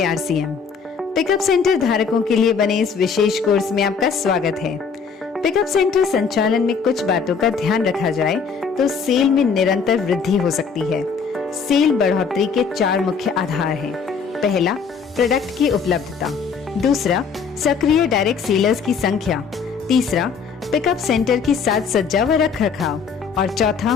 RCM. Pickup centre धारकों के लिए बने इस विशेष कोर्स में आपका स्वागत है। पिकअप सेंटर संचालन में कुछ बातों का ध्यान रखा जाए तो सेल में निरंतर वृद्धि हो सकती है। सेल बढ़ोतरी के 4 मुख्य आधार हैं। पहला, प्रोडक्ट की उपलब्धता। दूसरा, सक्रिय डायरेक्ट सेलर्स की संख्या। तीसरा, पिकअप सेंटर की साज सज्जा व रख रखाव। और चौथा,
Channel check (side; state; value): right; quieter; 5.8 dB